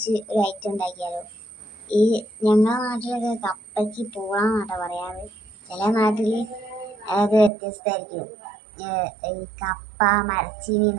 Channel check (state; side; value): drops out; left; at 7.5 s